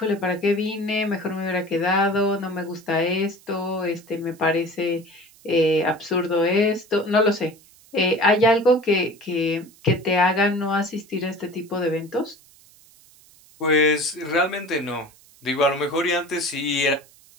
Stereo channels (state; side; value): noise; right; hiss, 27 dB below the sound